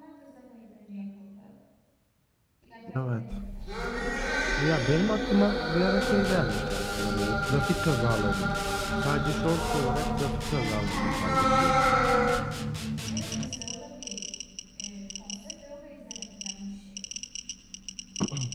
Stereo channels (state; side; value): identical; both; correlation 1.00